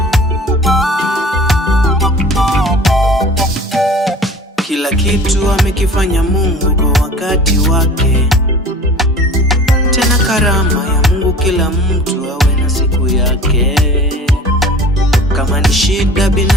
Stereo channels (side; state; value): both; normal; correlation 0.43